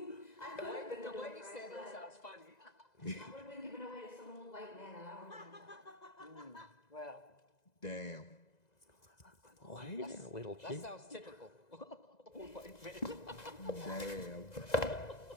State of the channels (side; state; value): right; late; 2.0 ms